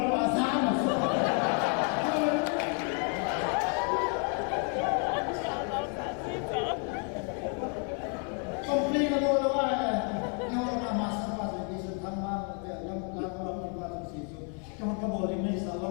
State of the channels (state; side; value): quieter; right; 39.2 dB